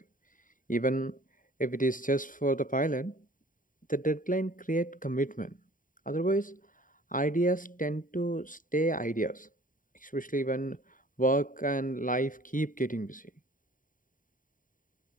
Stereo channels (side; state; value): right; late; 0.39 ms